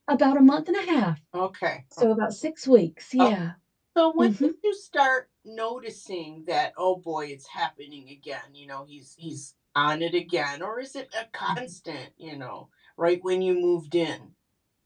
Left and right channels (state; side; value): identical; both; correlation 1.00